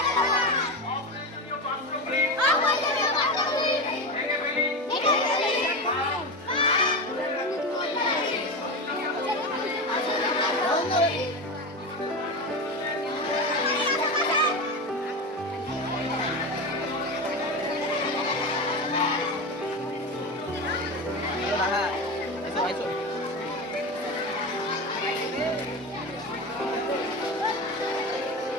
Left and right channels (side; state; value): both; normal; correlation 0.21